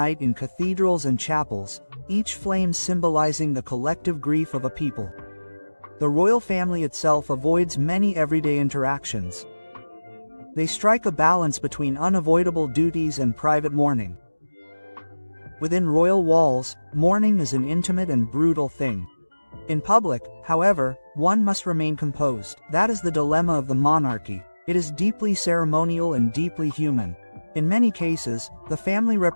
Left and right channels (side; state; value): both; inverted; correlation -1.00